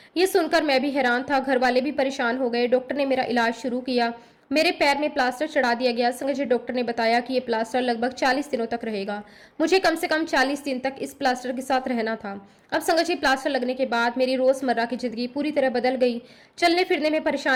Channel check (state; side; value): identical; both; correlation 1.00